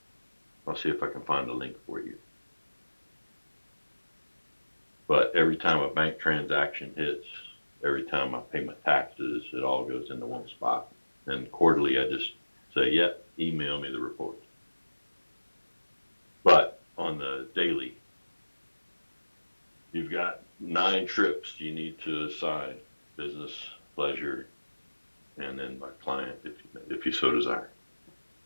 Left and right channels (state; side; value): inverted; both; correlation -1.00